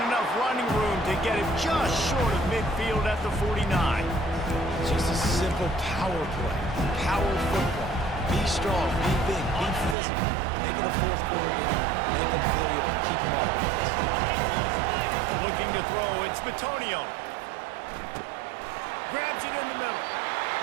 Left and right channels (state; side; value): drops out; left; at 10.0 s